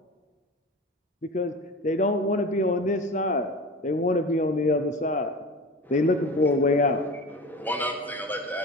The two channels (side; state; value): both; normal; correlation 0.32